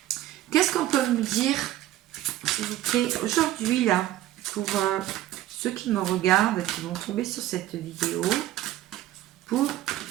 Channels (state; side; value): quieter; left; 14.3 dB